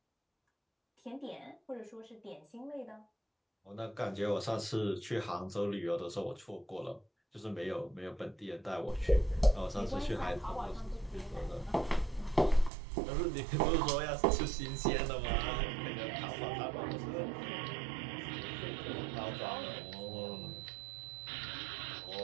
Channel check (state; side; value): drops out; left; at 12.7 s